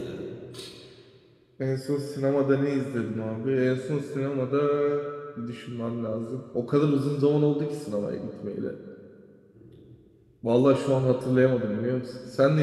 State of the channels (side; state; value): both; identical; correlation 1.00